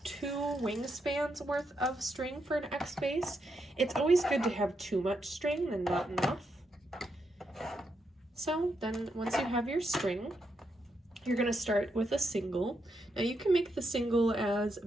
2 wingspans worth of string for an X base. It's always good to have too much string than not enough. So then once you have your string, you're going to start with a single. Now you can make the single as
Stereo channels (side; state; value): both; normal; correlation 0.82